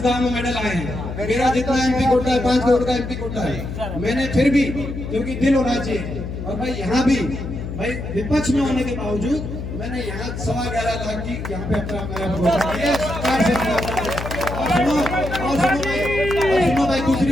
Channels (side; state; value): left; noise; hum, 7 dB below the sound